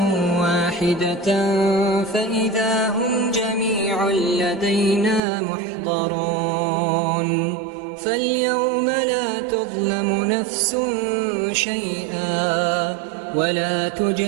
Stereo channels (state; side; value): drops out; left; at 5.2 s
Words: واحدة فإذا هم جميع لدينا محضرون فاليوم لا تظلم نفس شيئا ولا